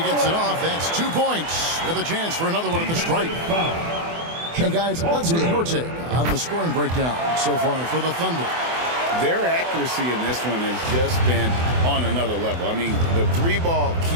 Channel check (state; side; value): late; left; 24 ms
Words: it off. That's 2 points with a chance for another one at the stripe. Hey, guys, let's get your take on the scoring breakdown so far for the Thunder. Their accuracy in this one has just been on another level. I mean, the 3-ball